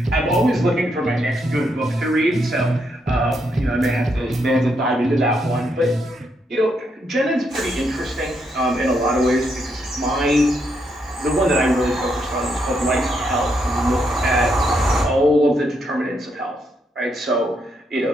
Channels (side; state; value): both; normal; correlation 0.78